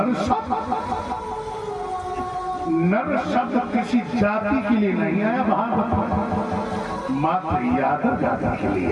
नर शब्द किसी जाति के लिए नहीं आया भागवत में, मात्र यादव जाति के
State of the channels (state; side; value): identical; both; correlation 1.00